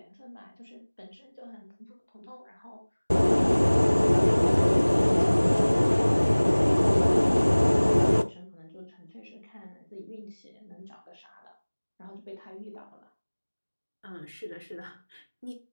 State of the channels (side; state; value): both; inverted; correlation -1.00